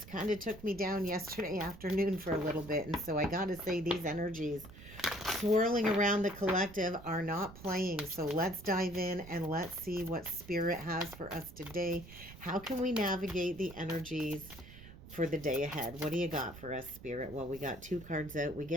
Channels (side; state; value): right; noise; rumble, 17 dB below the sound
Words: kind of took me down yesterday afternoon for a little bit. And so I got to say, these energies swirling around the collective are not playing. So let's dive in and let's see what Spirit has for us today. How can we navigate the energies for the day ahead? What do you got for us, Spirit? Well, we got two cards out. We